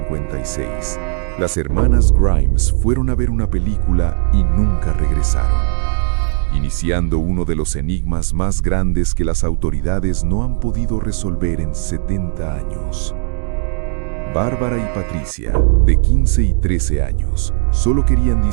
las hermanas Grimes fueron a ver una película y nunca regresaron, iniciando uno de los enigmas más grandes que las autoridades no han podido resolver en 70 años. Bárbara y Patricia, de 15 y 13 años, solo querían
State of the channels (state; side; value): silent; left; digital silence